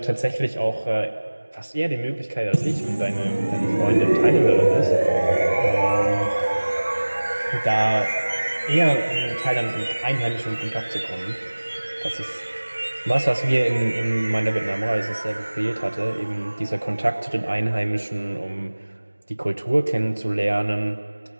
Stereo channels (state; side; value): inverted; both; correlation -1.00